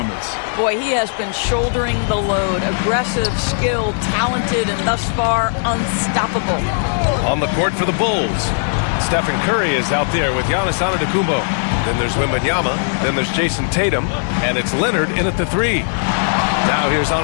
Boy, he has been shouldering the load. Aggressive, skilled, talented, and thus far, unstoppable. On the court for the Bulls, Stephen Curry is out there with Giannis Antetokounmpo. Then there's Wembanyama. Then there's Jason Tatum. And it's Leonard in at the 3. Now here's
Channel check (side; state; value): right; silent; digital silence